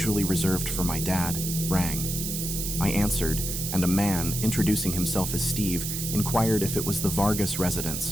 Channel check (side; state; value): right; noise; hiss, 3 dB below the sound